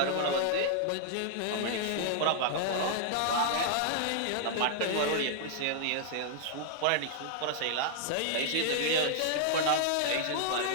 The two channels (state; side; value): different; both; correlation -0.01